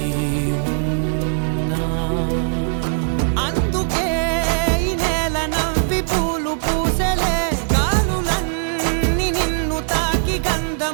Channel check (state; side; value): silent; left; 66 dB below the other